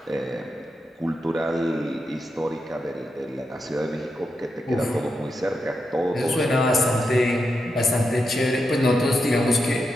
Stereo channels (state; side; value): normal; both; correlation 0.86